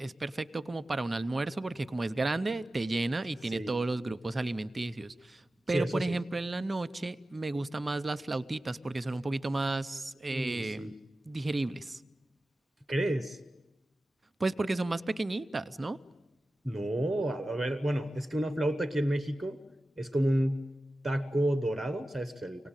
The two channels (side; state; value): both; normal; correlation 0.95